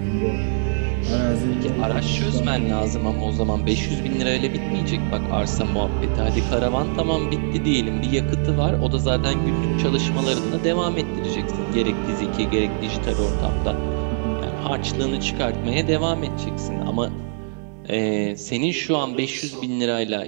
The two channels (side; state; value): left; silent; digital silence